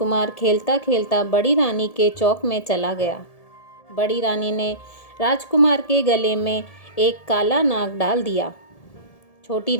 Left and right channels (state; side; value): late; right; 1.7 ms